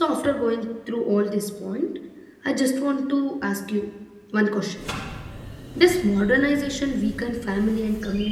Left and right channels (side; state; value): both; identical; correlation 1.00